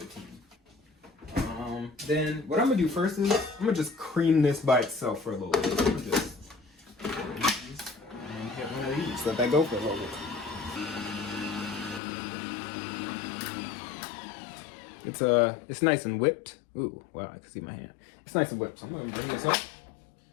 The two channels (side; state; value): right; drops out; at 12.0 s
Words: Then what I'm gonna do first is I'm gonna just cream this by itself for a little bit. I'm gonna just and get one of these. Let that go for a little bit. It's nice and whipped. Ooh, wow, I can see my hand. It's nice and whipped, so I'm gonna bring this up.